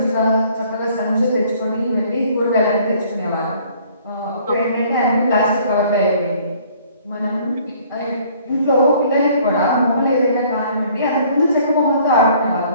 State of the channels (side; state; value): both; inverted; correlation -0.57